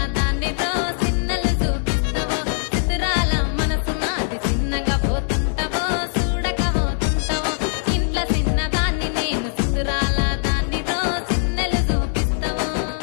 దాన్నితో చిన్నలు చూపిస్తావో చిత్రాల మనసు నాది చిన్నగా పోతుంటావో చూడకపోతుంటావో ఇంట్లో చిన్నదాన్ని నేను చిత్రాల దాన్నితో చిన్నలు చూపిస్తావో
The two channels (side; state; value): right; silent; digital silence